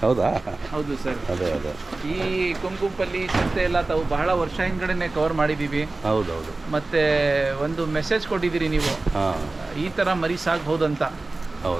ಹೌದಾ? ಹೌದು ಸರ್. ಅದೇ ಅದೇ ಈ ಕೊಂಕುಂಪಲ್ಲಿ ಸಂತೆ ಎಲ್ಲ ತಾವು ಬಹಳ ವರ್ಷ ಹಿಂದ್ಗಡೆನೆ ಕವರ್ ಮಾಡಿದ್ದೀವಿ. ಹೌದೌದು. ಮತ್ತೆ ಒಂದು ಮೆಸೇಜ್ ಕೊಟ್ಟಿದ್ದೀರಿ ನೀವು, ಹಾಂ, ಈ ಥರ ಮರಿ ಸಾಕ್ಬಹುದಂತ.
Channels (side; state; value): left; quieter; 3.3 dB